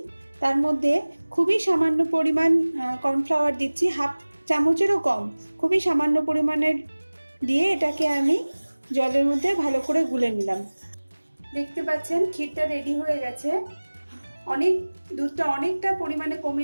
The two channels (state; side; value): inverted; both; correlation -1.00